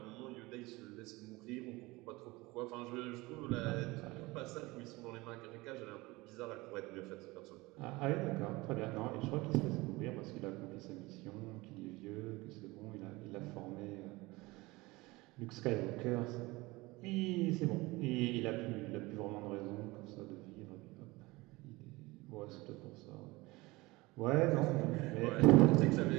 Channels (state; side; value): quieter; left; 21.9 dB